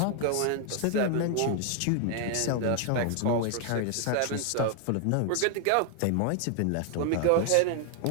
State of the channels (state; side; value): different; both; correlation 0.00